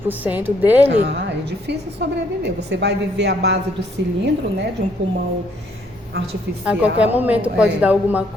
dele. É difícil sobreviver. Você vai viver à base do cilindro, né, de um pulmão artificial. A qualquer momento pode dar alguma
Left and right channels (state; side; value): normal; both; correlation 0.67